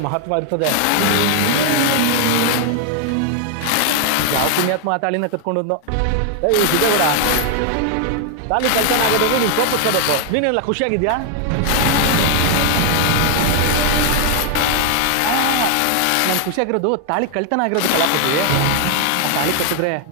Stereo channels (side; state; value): both; different; correlation 0.00